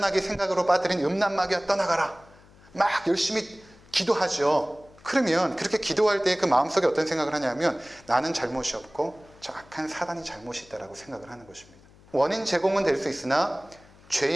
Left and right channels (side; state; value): left; noise; hum, 25 dB below the sound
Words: 생각으로 빠뜨린 음란마귀야 떠나가라. 막 열심히 기도하죠. 그러면 그렇게 기도할 때 그 마음속에 어떤 생각을 하냐면, 나는 잘못이 없고 저 악한 사단이 잘못이 있다라고 생각을 하는 것입니다. 원인 제공은 될 수 있으나